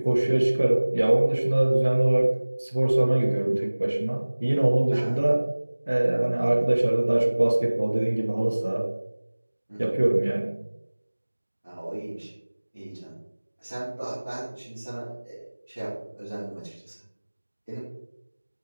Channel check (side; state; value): both; inverted; correlation -1.00